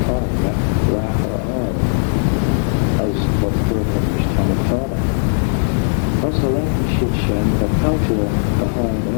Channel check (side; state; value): right; silent; 67 dB below the other